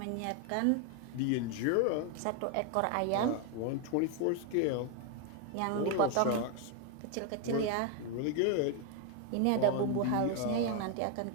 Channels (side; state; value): both; different; correlation 0.01